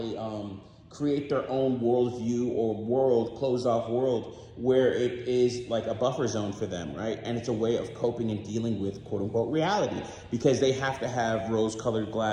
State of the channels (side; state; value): both; identical; correlation 1.00